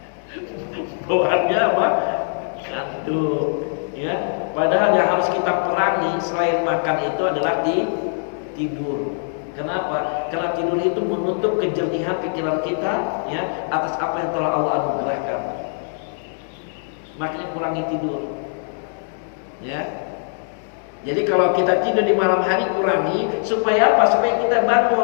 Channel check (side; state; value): right; silent; digital silence